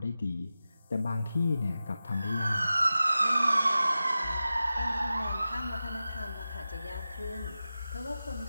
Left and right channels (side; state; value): both; inverted; correlation -0.93